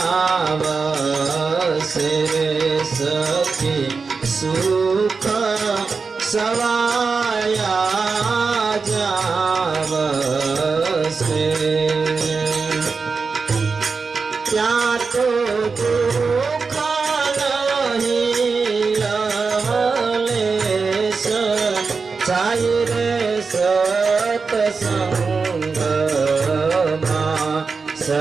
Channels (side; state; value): left; quieter; 4.8 dB